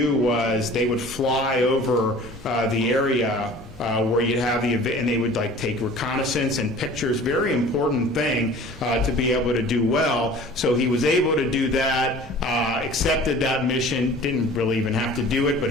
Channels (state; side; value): normal; both; correlation 0.45